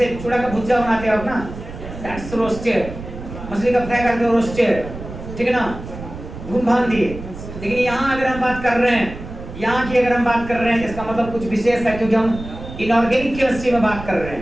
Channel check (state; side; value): noise; right; rumble, 11 dB below the sound